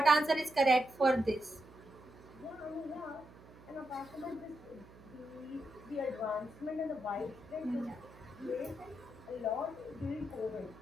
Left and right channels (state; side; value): noise; right; hum, 21 dB below the sound